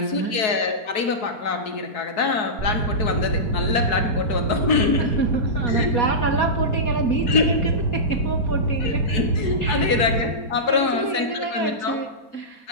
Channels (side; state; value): right; late; 4.7 ms